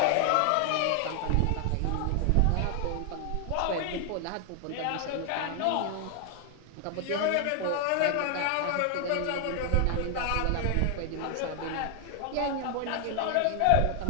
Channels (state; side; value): different; both; correlation 0.00